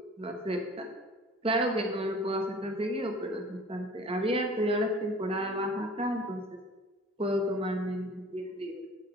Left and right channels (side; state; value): both; normal; correlation 0.46